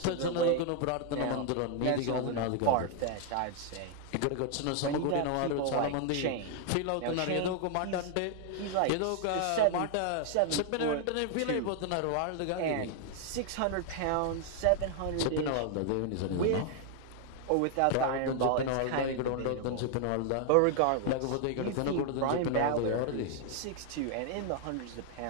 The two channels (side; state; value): both; different; correlation 0.00